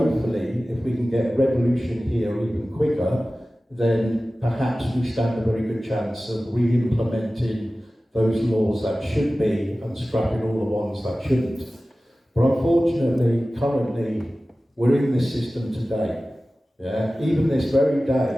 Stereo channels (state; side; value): normal; both; correlation 0.96